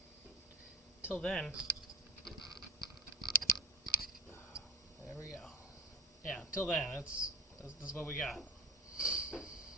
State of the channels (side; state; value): both; normal; correlation 0.38